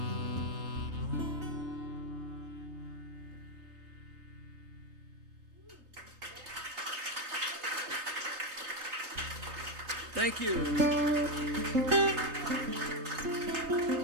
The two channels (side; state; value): left; late; 3.3 ms